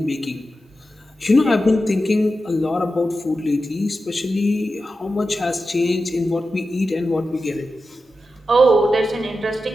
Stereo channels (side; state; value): both; normal; correlation 0.91